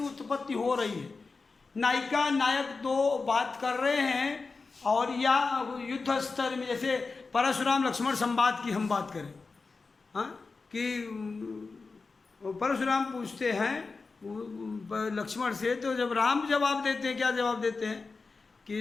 उत्पत्ति हो रही है। नायिका नायक दो बात कर रहे हैं, और या युद्ध स्तर में जैसे परशुराम लक्ष्मण संवाद की हम बात करें, हाँ, कि परशुराम पूछते हैं लक्ष्मण से, तो जब राम जवाब देते हैं, क्या जवाब देते हैं कि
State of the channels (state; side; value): quieter; right; 4.2 dB